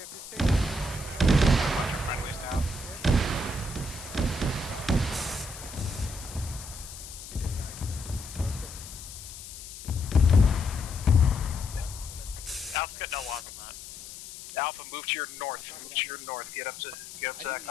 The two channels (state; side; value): noise; left; hiss, 13 dB below the sound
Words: if this Bunch of friendlies down. Alpha's got no eyes on that. Alpha, move to your north. Move to your north. Get up to that